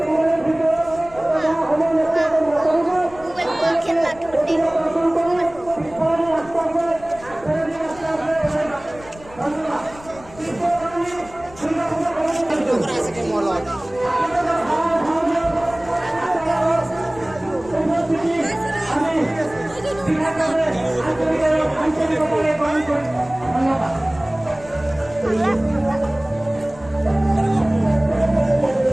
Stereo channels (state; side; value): noise; left; rumble, 20 dB below the sound